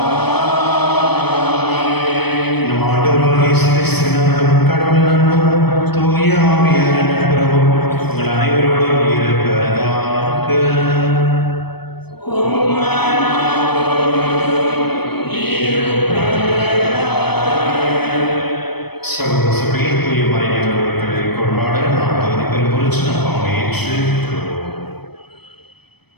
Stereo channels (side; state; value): right; late; 0.98 ms